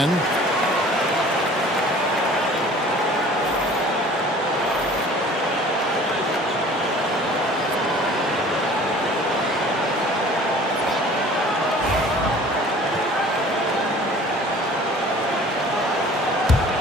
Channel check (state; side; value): normal; both; correlation 0.48